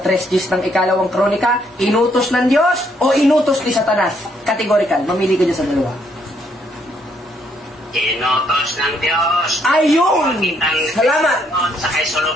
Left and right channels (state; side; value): normal; both; correlation 0.71